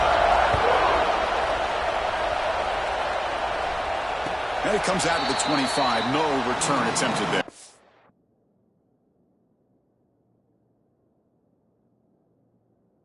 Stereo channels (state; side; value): identical; both; correlation 1.00